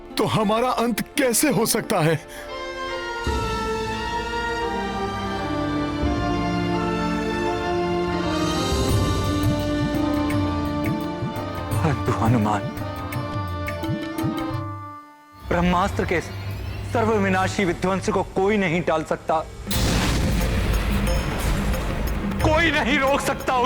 तो हमारा अंत कैसे हो सकता है? परंतु हनुमान, ब्रह्मास्त्र के सर्वविनाशी विध्वंस को कोई नहीं टाल सकता, कोई नहीं रोक सकता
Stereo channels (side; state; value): both; identical; correlation 1.00